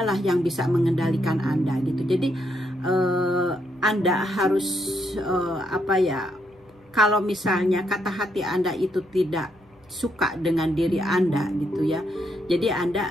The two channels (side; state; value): both; normal; correlation 0.76